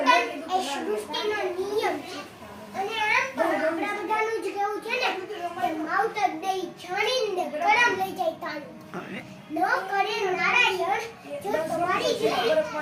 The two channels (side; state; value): both; identical; correlation 1.00